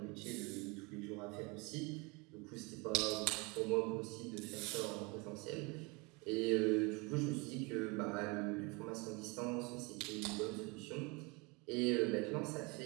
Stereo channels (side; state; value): left; quieter; 27.9 dB